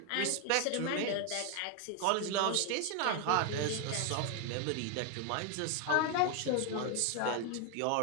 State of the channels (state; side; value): different; both; correlation 0.01